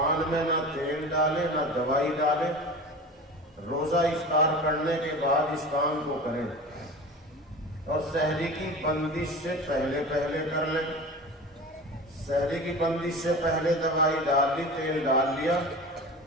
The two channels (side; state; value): both; normal; correlation 0.33